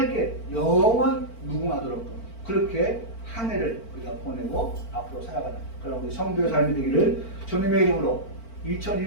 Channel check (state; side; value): late; right; 4.4 ms